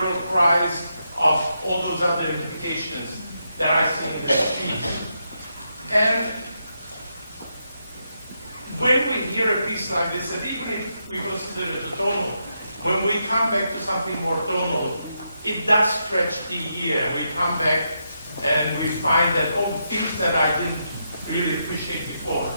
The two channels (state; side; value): inverted; both; correlation -0.82